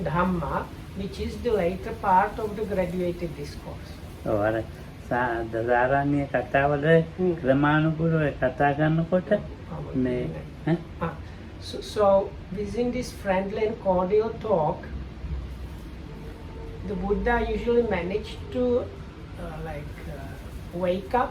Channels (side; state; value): both; identical; correlation 1.00